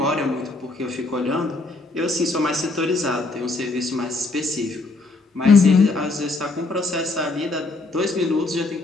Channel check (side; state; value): right; quieter; 3.3 dB